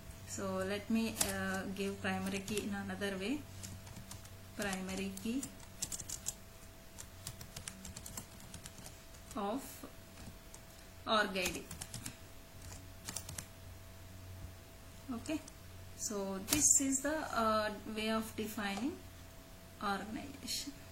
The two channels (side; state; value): both; identical; correlation 1.00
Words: so let me give primary key in another way. Primary key of org ID. Okay, so this is the way of defining organization.